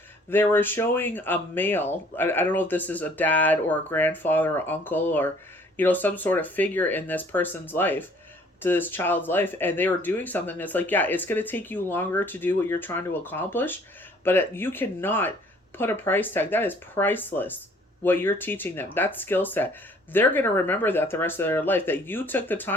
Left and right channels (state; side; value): normal; both; correlation 0.57